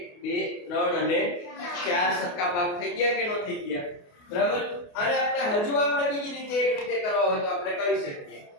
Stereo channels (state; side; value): late; right; 28 ms